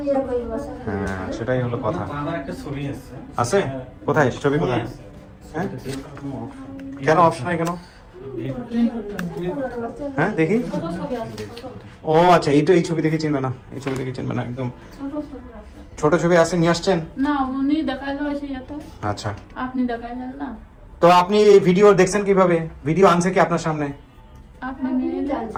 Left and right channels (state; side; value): identical; both; correlation 1.00